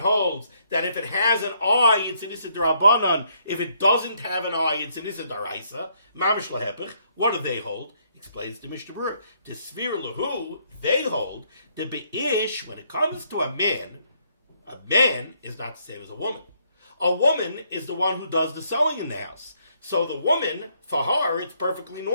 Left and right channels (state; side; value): inverted; both; correlation -0.70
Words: that if it has an eye, it's an Issa D'Rabbanan. If it doesn't have an eye, it's an Issa D'Oraisa. Mamish lahepech. What do they hold? Explains the Mishnah Berurah. The Svir Lahu, they hold the Be'ish, when it comes to a man is not the same as a woman. A woman is the one who does the sewing in the house. So the woman, for her, it's perfectly